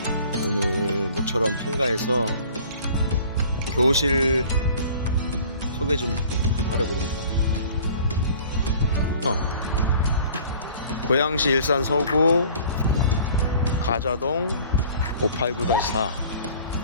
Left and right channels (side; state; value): both; inverted; correlation -0.49